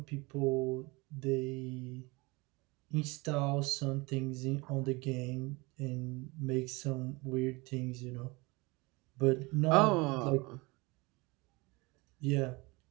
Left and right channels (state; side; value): quieter; left; 24.9 dB